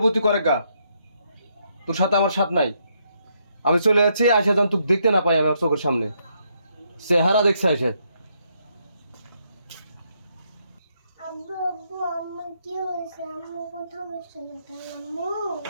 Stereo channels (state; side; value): inverted; both; correlation -0.75